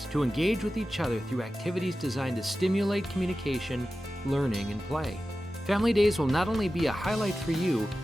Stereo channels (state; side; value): normal; both; correlation 0.94